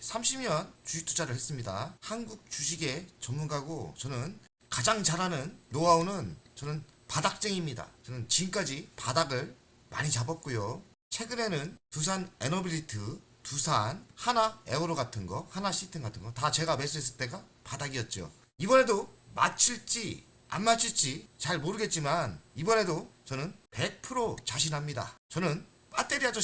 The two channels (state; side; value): identical; both; correlation 1.00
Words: 30년 주식 투자를 했습니다. 한국 주식의 전문가고 저는 가장 잘하는 노하우는 저는 바닥쟁이입니다. 저는 지금까지 바닥을 많이 잡았고요. 최근에는 두산 에너빌리트, 두산, 하나 에어로 같은 거, 하나 시스템 같은 거 다 제가 매수했을 때가 바닥이었죠. 이번에도 맞출지 안 맞출지 잘 모르겠지만 이번에도 저는 100% 자신합니다. 저는 배터리